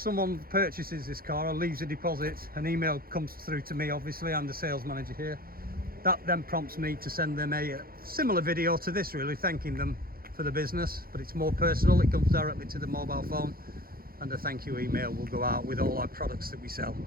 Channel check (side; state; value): left; late; 0.43 ms